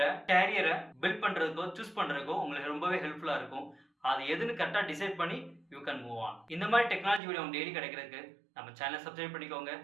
கேரியரை பில்ட் பண்றதுக்கோ சூஸ் பண்றதுக்கோ உங்களுக்கு ரொம்பவே ஹெல்ப்ஃபுல்லா இருக்கும். அது எதுன்னு கரெக்டா டிசைட் பண்ணி யூ கேன் மூவ் ஆன். இந்த மாதிரி டெக்னாலஜி வீடியோ டெய்லி கிடைக்கிறதுக்கு நம்ம சேனலை சப்ஸ்கிரைப் பண்ணிக்கோங்க.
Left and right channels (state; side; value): drops out; left; at 7.2 s